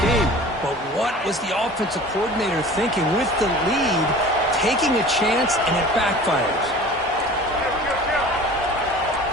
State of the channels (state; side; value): normal; both; correlation 0.42